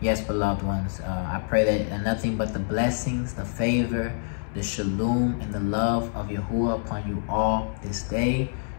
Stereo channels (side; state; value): right; silent; 61 dB below the other